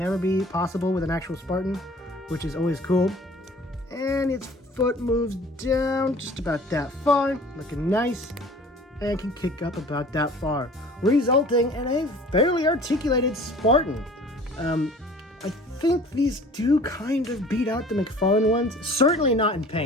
be possible with an actual Spartan, which is always cool. And its foot moves down just about that far, looking nice, and can kick up about that far, resulting in a fairly articulated Spartan. I think these do kind of beat out the McFarlane ones. Certainly not in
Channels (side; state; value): both; normal; correlation 0.47